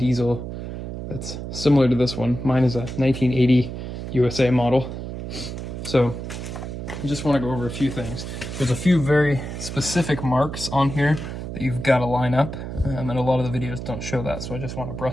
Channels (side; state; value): right; noise; hum, 7 dB below the sound